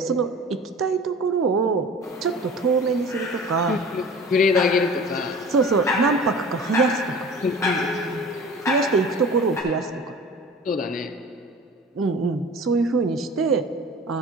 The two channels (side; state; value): both; normal; correlation 0.40